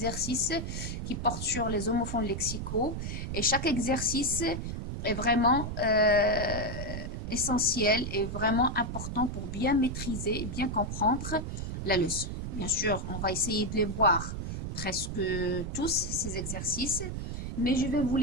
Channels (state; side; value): noise; right; rumble, 5 dB below the sound